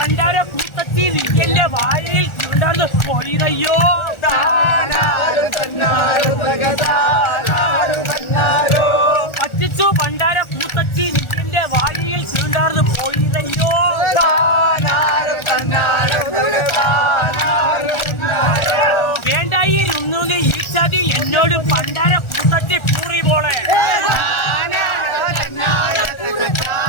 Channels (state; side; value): late; right; 1.4 ms